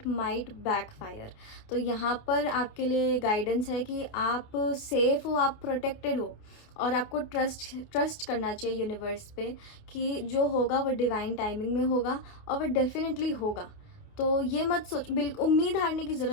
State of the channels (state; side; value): late; right; 28 ms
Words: माइट बैकफायर। तो यहाँ पर आपके लिए गाइडेंस है कि आप सेफ हो, आप प्रोटेक्टेड हो, और आपको ट्रस्ट करना चाहिए यूनिवर्स पे कि जो होगा वो डिवाइन टाइमिंग में होगा, और वो डेफिनेटली होगा। तो ये मत सोच, बिल्कुल उम्मीद हारने की